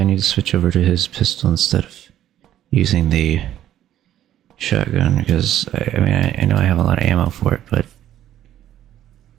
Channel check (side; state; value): left; quieter; 11.9 dB